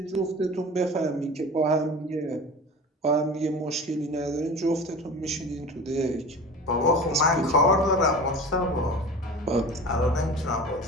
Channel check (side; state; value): both; normal; correlation 0.35